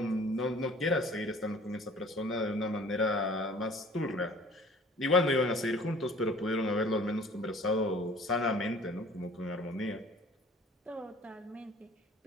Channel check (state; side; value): normal; both; correlation 0.49